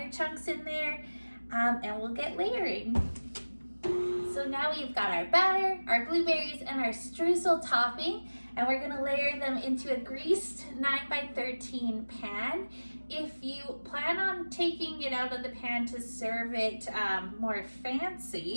chunks in there, and we'll get layering. So now we've got our batter, our blueberries, and our streusel topping, and we're gonna layer them into a greased 9x13 pan. If you plan on taking it out of the pan to serve it more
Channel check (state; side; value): inverted; both; correlation -1.00